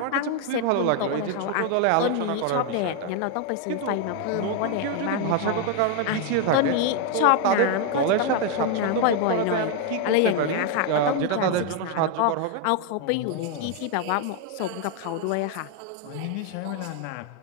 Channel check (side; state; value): both; different; correlation 0.01